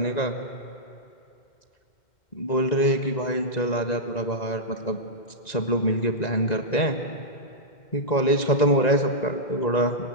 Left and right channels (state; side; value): late; right; 1.9 ms